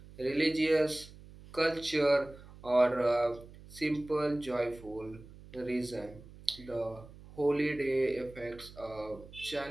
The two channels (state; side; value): noise; right; hum, 19 dB below the sound